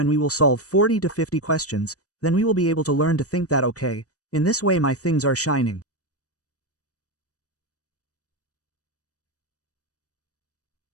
we will solve 40 to 50 questions, then we will be able to learn to think that okay, in this way my things are shining.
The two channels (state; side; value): late; right; 0.67 ms